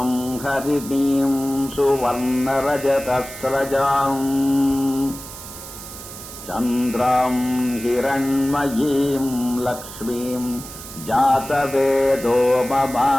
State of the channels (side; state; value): right; noise; hiss, 13 dB below the sound